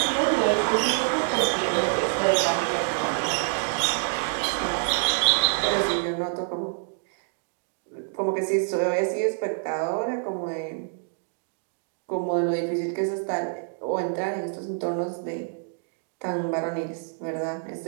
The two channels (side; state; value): left; silent; digital silence